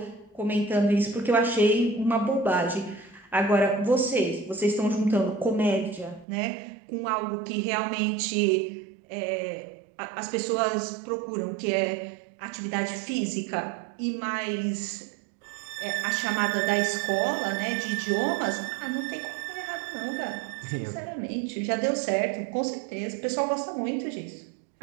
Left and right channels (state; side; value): drops out; left; at 6.2 s